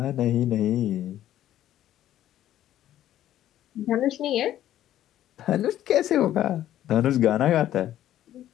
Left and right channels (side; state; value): right; quieter; 12.4 dB